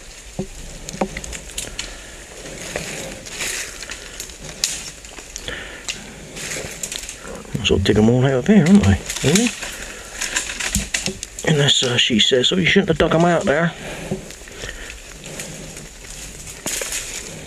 Might as well dig them all out of here, aren't I? Really? Unless she says, oh, you shouldn't have dug them out there.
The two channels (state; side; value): identical; both; correlation 1.00